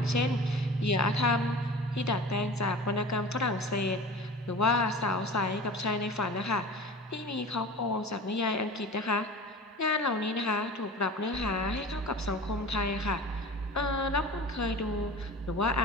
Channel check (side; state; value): both; normal; correlation 0.37